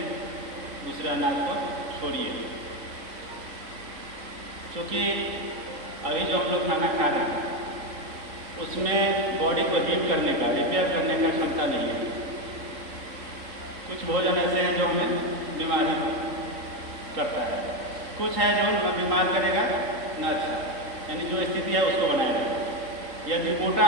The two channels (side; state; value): left; late; 3.8 ms